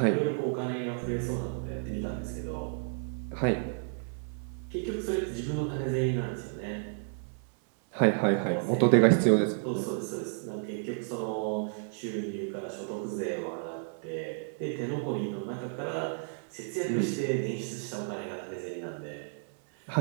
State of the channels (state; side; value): silent; left; 56 dB below the other